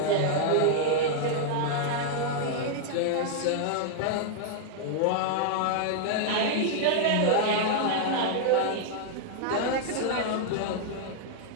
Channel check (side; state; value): both; different; correlation -0.01